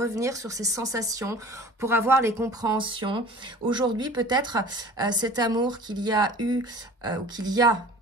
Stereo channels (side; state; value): both; normal; correlation 0.44